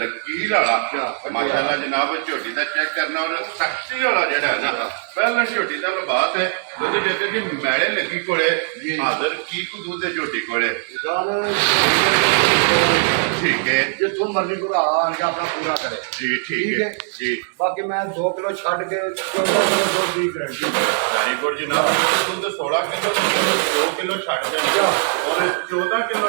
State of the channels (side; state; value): left; silent; 65 dB below the other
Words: ਵਾਲਾ ਮਾਸ਼ਾਅੱਲਾ ਜਨਾਬ ਝੋਟੀ ਦਾ ਚੈੱਕ ਕਰਨਾ ਔਰ ਸਖਤੀ ਵਾਲਾ ਜਿਹੜਾ ਹੈ ਨਾ ਪਹਿਲਾਂ ਝੋਟੀ ਦਾ ਲਿਬਾਸ ਹੈ ਉਹਦੇ ਜੱਗੇ ਕਿ ਮੈਲੇ ਲੱਗੀ ਕੋਲੇ ਹਾਜ਼ਰ ਕੀ ਕੁ ਦੁੱਧ ਦੇ ਝੋਟੀ ਕੋਲੇ ਗੱਲ ਠੀਕ ਹੈ ਜਿੱਥੋਂ ਮਰਜ਼ੀ ਘੁਰਾ ਆ ਕੇ ਆਪਣਾ ਪੂਰਾ ਕਰੇ ਜੀ ਠੀਕ ਹੈ ਜੀ ਬਾਕੀ ਮੈਂ 2 ਕਿਲੋ ਛੱਡ ਕੇ 14 ਕਿਲੋ ਦੁੱਧ ਦੀ ਗਰੰਟੀ ਵੈਰੀ ਗੁੱਡ ਜਨਾਬ ਦੁੱਧ 16 ਕਿਲੋ 2 ਕਿਲੋ ਛੱਡ ਦਿੰਦਾ ਔਰ 14